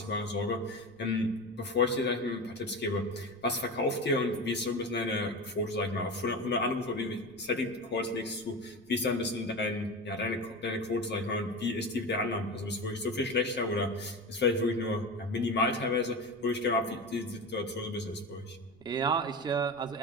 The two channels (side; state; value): left; noise; rumble, 29 dB below the sound